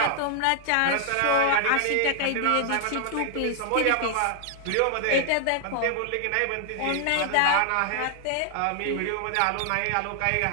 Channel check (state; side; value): different; both; correlation 0.00